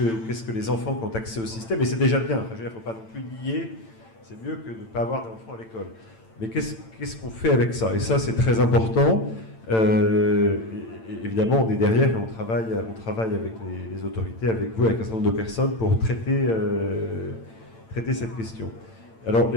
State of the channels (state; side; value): late; right; 8.9 ms